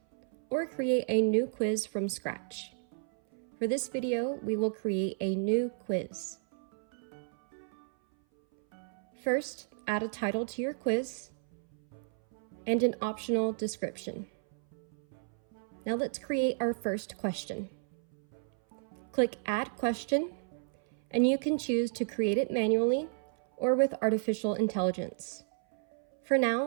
or create a new quiz from scratch. For this video, we will create a new quiz. First, add a title to your quiz and an optional description. Now let's create our first question. Click Add Question, and you can choose to create it manually or with artificial intelligence. For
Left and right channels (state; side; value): silent; left; 56 dB below the other